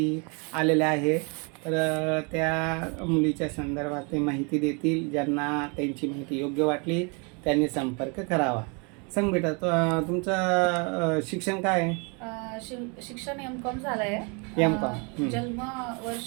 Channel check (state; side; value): quieter; left; 33.4 dB